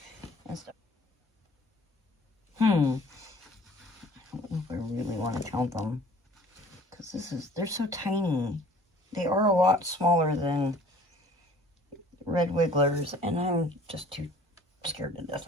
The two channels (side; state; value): both; normal; correlation 0.51